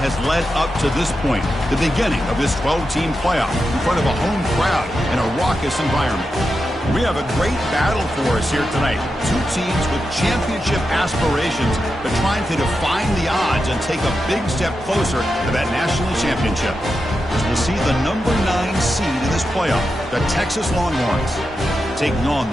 led up to this point, the beginning of this 12-team playoff in front of a home crowd in a raucous environment. We have a great battle for us here tonight. Two teams with championship aspirations, but trying to define the odds and take a big step closer to that national championship. As we'll see the number 9 seed in this playoff, the Texas Longhorns, taking on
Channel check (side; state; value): both; normal; correlation 0.88